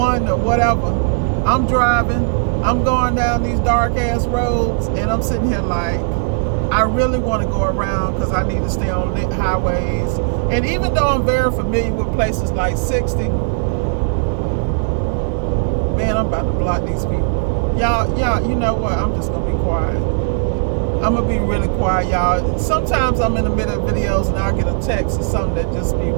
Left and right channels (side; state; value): left; silent; 68 dB below the other